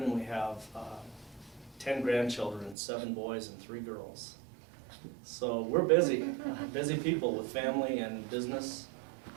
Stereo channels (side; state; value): left; drops out; at 2.8 s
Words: We have 10 grandchildren, 7 boys and 3 girls. So we're busy, busy people with family and business.